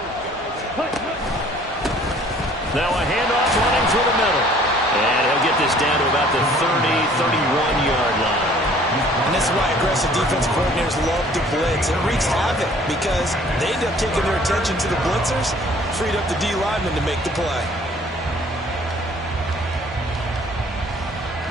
Now a handoff running through the middle. And he'll get this down to about the 30, 31-yard line. And this is why aggressive defense coordinators love to blitz. It wreaks havoc because they end up taking their attention to the blitzers, freed up the D lineman to make the play.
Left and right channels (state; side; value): normal; both; correlation 0.55